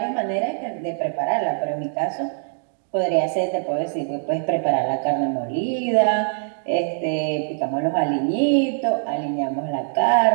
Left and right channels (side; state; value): left; silent; digital silence